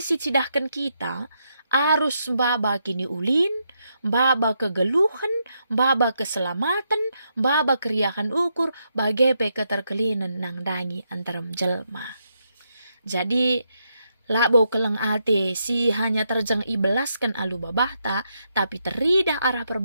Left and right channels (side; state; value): both; inverted; correlation -0.80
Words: si cidahkan kita, arus mbaba kini ulin, mbaba kegeluhan, mbaba keselamatan, mbaba keriahan ukur, bagepe keterkelinan nang dangi antaram jelma. Jadi, labo keleng ate si hanya terjang ibelaskan alu babahta, tapi teridah arah